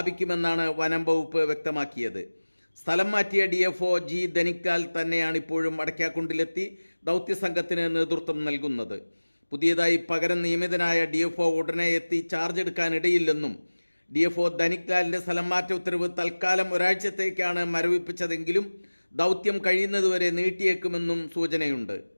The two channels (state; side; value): inverted; both; correlation -1.00